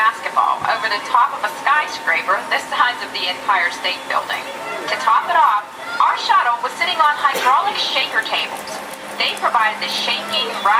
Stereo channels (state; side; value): identical; both; correlation 1.00